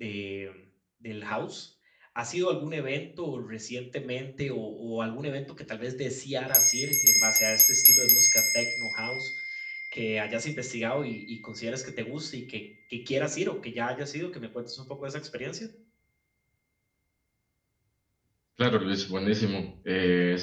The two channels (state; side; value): identical; both; correlation 1.00